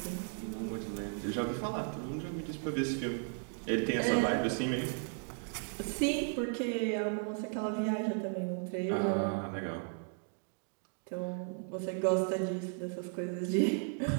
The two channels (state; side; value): silent; left; 54 dB below the other